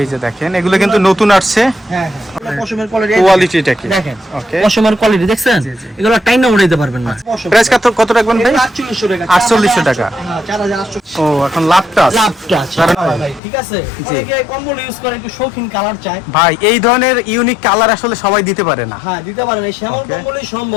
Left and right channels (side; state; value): right; drops out; at 13.4 s